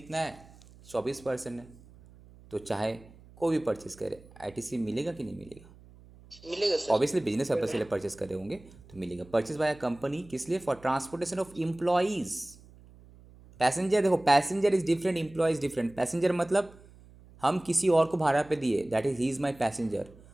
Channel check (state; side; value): noise; right; hum, 23 dB below the sound